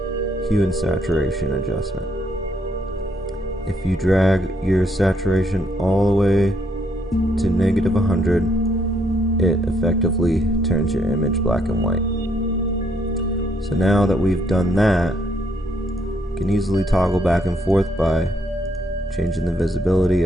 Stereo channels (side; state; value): both; normal; correlation 0.72